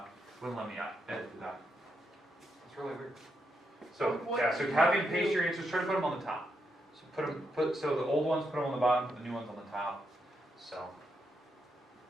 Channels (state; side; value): normal; both; correlation 0.82